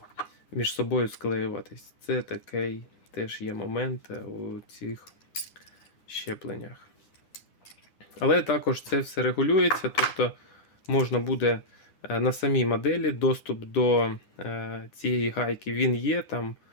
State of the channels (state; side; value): late; right; 9.7 ms